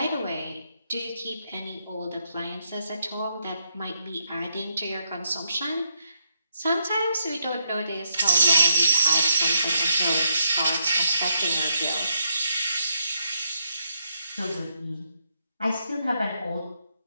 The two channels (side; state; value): both; inverted; correlation -0.78